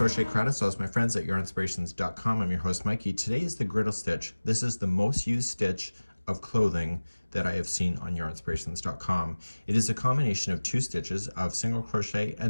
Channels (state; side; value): inverted; both; correlation -1.00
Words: Credits. So, as my friends at Yarnspirations.com, I'm your host Mikey. Today is the Griddle stitch. This is the most used stitch of clothing that I have seen on Yarnspirations.com. It is a combination of two stitches of single crochet